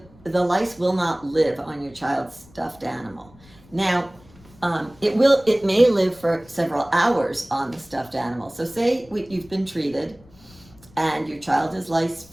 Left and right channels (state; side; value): noise; left; rumble, 26 dB below the sound